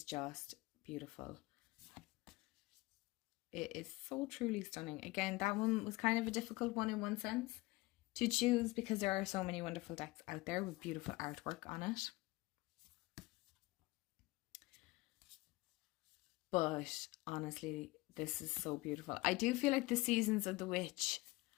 just beautiful. It is so truly stunning. Again, that one was kind of a difficult one in one sense to choose, because there are so many wonderful decks out there with beautiful artwork on it. But honestly, this is so beautiful. I do feel like the seasons of the witch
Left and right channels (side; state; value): right; quieter; 21.3 dB